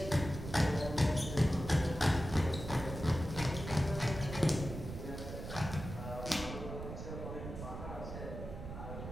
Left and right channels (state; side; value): noise; right; rumble, 8 dB below the sound